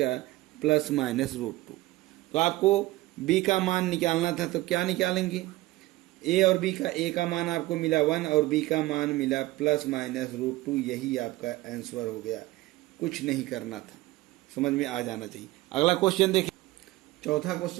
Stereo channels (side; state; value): left; quieter; 18.7 dB